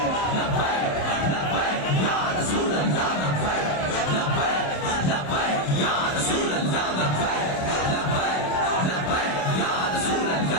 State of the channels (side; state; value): right; late; 27 ms